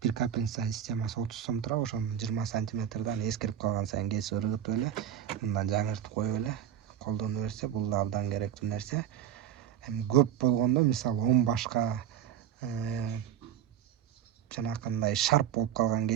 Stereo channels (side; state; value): left; quieter; 10.3 dB